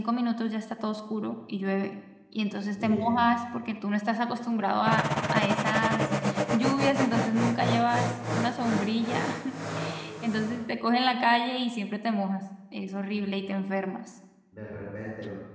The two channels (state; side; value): identical; both; correlation 1.00